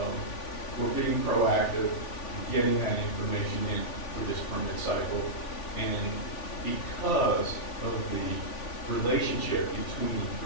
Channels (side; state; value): right; late; 3.5 ms